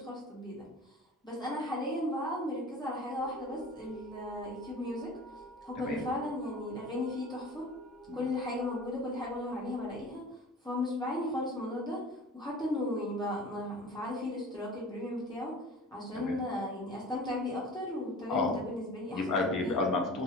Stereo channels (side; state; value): both; normal; correlation 0.41